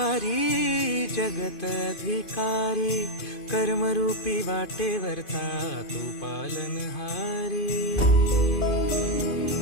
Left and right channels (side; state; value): right; late; 2.5 ms